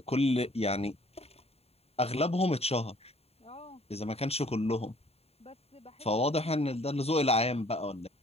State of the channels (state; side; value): late; right; 0.29 ms